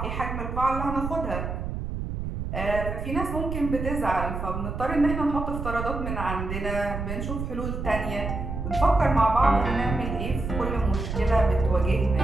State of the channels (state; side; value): noise; right; rumble, 4 dB below the sound